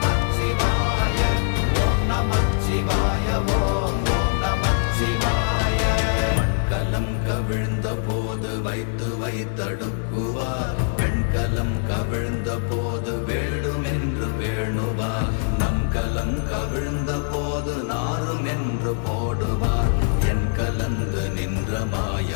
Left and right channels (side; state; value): right; silent; 63 dB below the other